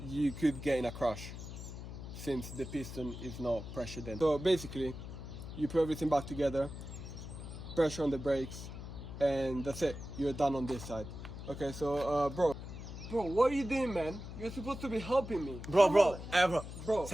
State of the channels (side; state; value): left; noise; hum, 10 dB below the sound